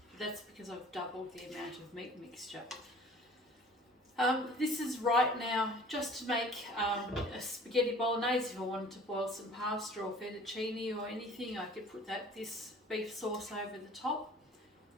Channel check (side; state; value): both; normal; correlation 0.49